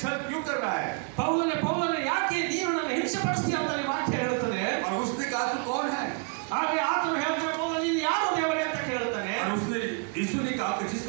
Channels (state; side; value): quieter; left; 36.7 dB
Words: छल क्यों कर रहा है? ಪೌಲನೇ ಯಾಕೆ ನೀನು ನನ್ನ ಹಿಂಸೆ ಪಡಿಸ್ತೀಯ ಅಂತ ಈ ವಾಕ್ಯ ಹೇಳುತ್ತದೆ. और उसने कहा तू कौन है? ಆದ್ರೆ ಆತನು ಹೇಳ್ತಾನೆ, ಪೌಲ ನೀನು ಯಾರು ದೇವರೇ ಅಂತ ಕೇಳ್ತಾನೆ. और उसने यीशु ने कहा कि